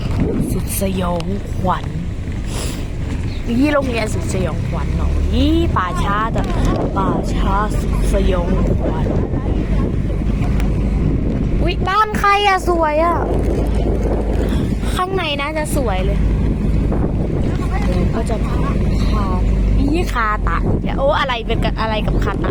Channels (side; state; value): both; identical; correlation 1.00